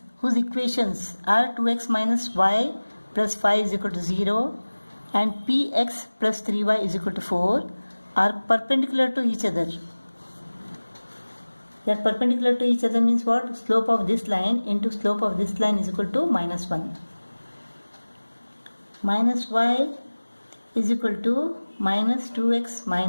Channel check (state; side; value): inverted; both; correlation -1.00